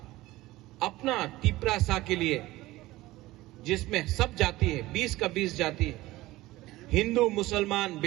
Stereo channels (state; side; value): quieter; left; 18.1 dB